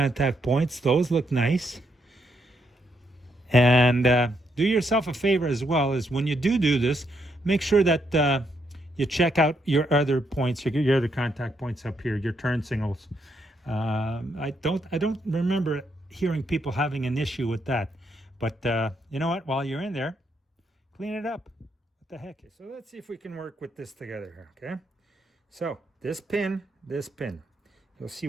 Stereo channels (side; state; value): both; normal; correlation 0.77